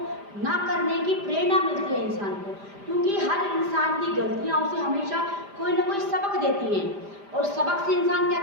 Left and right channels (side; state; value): left; late; 5.0 ms